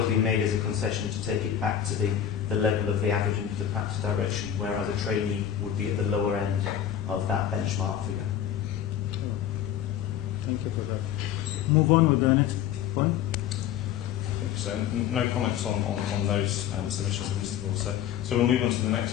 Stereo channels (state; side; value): quieter; right; 9.9 dB